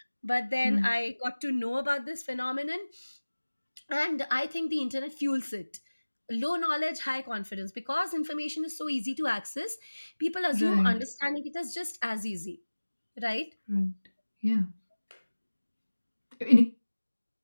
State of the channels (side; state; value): both; inverted; correlation -1.00